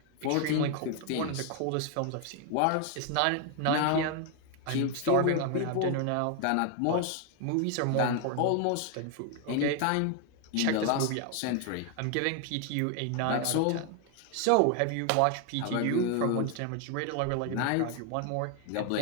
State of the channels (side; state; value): both; different; correlation 0.01